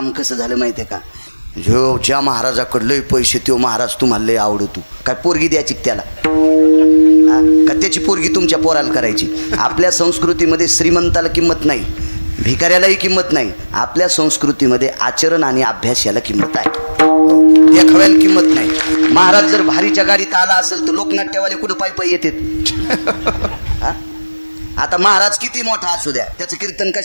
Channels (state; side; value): inverted; both; correlation -1.00